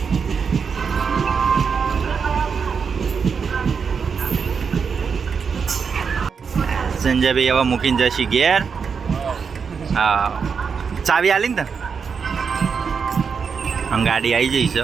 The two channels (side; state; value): left; quieter; 6.0 dB